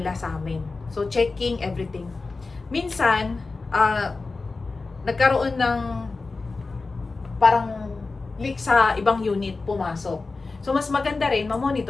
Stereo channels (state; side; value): quieter; right; 3.8 dB